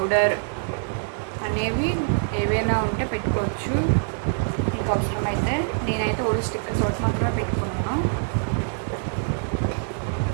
అనేవి ఏవైనా ఉంటే పెట్టుకోవచ్చు మీకు అవసరమైతే. నేనైతే ఓన్లీ స్టిక్కర్స్ ఒకటి మాత్రమే పెట్టుకున్నాను.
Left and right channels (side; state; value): left; silent; digital silence